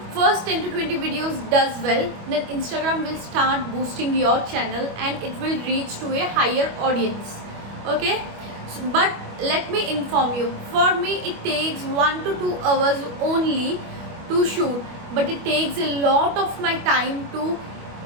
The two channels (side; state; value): left; late; 25 ms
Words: first 10 to 20 videos does well, then Instagram will start boosting your channel and it will reach to a higher audience. Okay, so, but let me inform you, for me it takes 1 to 2 hours only to shoot, but it takes a lot of my time to